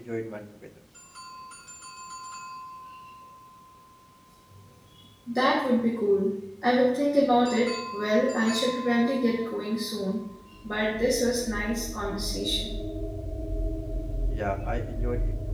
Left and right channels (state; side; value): identical; both; correlation 1.00